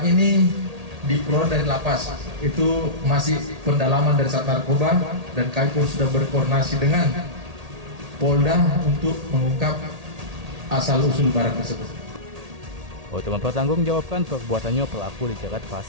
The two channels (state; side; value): late; left; 1.8 ms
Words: ini diperoleh dari lapas. Itu masih pendalaman dari Sat Narkoba dan kami pun sudah berkoordinasi dengan Polda untuk mengungkap asal-usul barang tersebut. Untuk mempertanggungjawabkan perbuatannya, pelaku dijerat